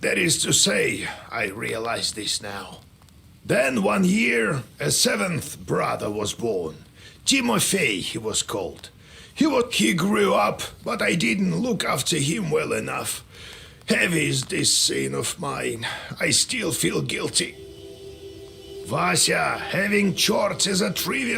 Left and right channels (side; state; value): both; identical; correlation 1.00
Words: That is to say, I realize this now. Then one year, a seventh brother was born. Timofey, he was called. He grew up, but I didn't look after him well enough. Heavy is this sin of mine. I still feel guilty. Vasya, having chores is a